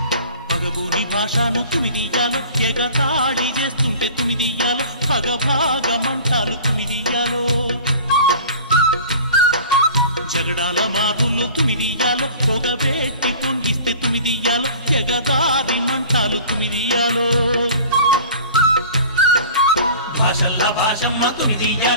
పగబూని భాషను తుమిదియ్యాలో ఎగతాళి చేస్తుంటే తుమిదియ్యాలో పగభాగమంటాలు తుమిదియ్యాలో జగడాల మారులు తుమిదియ్యాలో పొగబెట్టి పొంగిస్తే తుమిదియ్యాలో ఎగదారి మంటాలు తుమిదియ్యాలో భాషల్ల భాషమ్మ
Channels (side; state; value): both; inverted; correlation -0.43